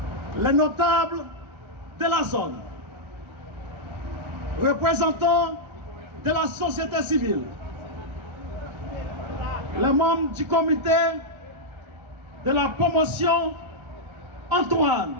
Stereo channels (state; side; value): late; left; 1.3 ms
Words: les notables de la zone, représentants de la société civile, les membres du comité de la promotion Antoine,